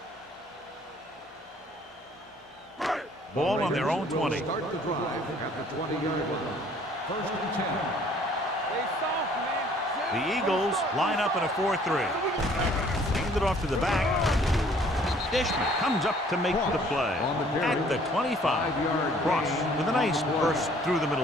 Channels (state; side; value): normal; both; correlation 0.57